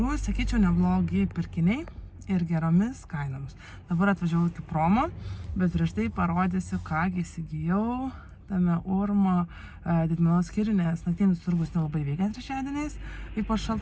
sakyčiau, neblogi pirkiniai ir geromis kainomis. Dabar atvažiavau iki promo, bet prieš tai parodysiu, ką įsigijau tame Urmo didmenos skyrių, nes naktinis turgus nelabai veikia trečiadieniais, ypač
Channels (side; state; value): both; identical; correlation 1.00